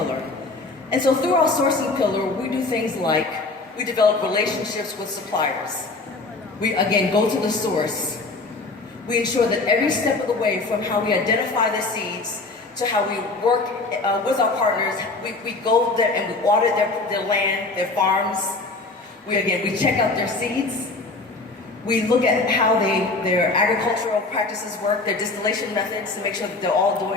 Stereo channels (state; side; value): quieter; right; 3.5 dB